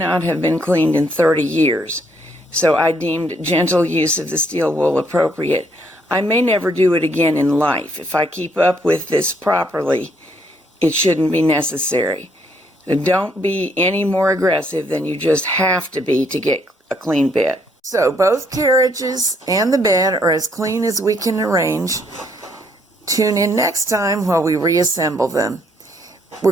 have been cleaned in 30 years, so I deemed gentle use of the steel wool appropriate. I may never do it again in life. If I keep up with this properly, it shouldn't be necessary. So don't be any more aggressive than you just have to be to get a clean bed. So both carriages and the bed are as clean as we can arrange. Tune in next time while we reassemble them. We're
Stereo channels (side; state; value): both; normal; correlation 0.69